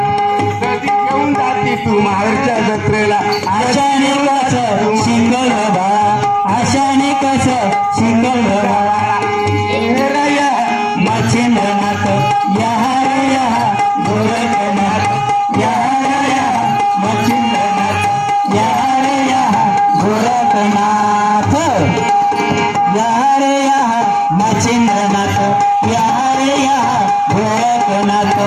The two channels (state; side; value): identical; both; correlation 1.00